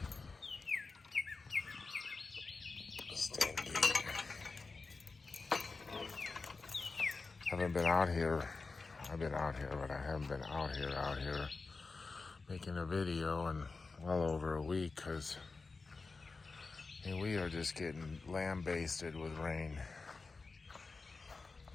Haven't been out here. I've been out here, but I haven't been out here making a video in well over a week because we are just getting lambasted with rain.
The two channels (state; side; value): quieter; right; 4.1 dB